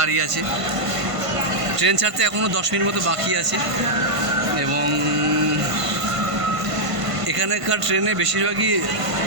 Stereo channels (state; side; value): late; left; 1.5 ms